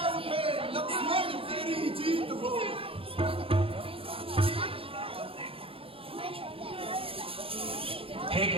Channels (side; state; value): left; late; 0.27 ms